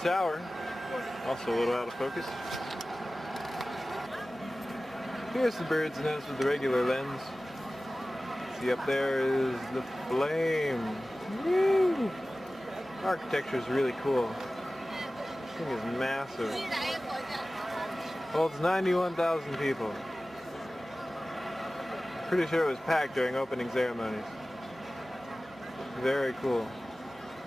tower. Also a little out of focus. Here's the bird's nest with the regular lens. See, up there is the flame. Woo! Architecture is really cool. This thing is massive. Holds 91,000 people. Pretty sure it was packed during opening ceremonies. Very cool.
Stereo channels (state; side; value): normal; both; correlation 0.97